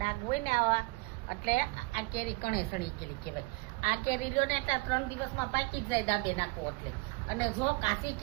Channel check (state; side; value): quieter; left; 25.7 dB